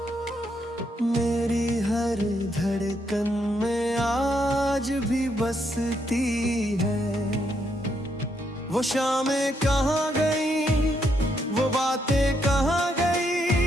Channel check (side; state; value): both; normal; correlation 0.77